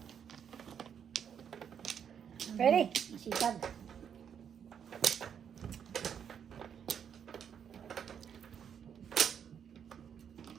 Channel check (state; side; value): quieter; left; 8.0 dB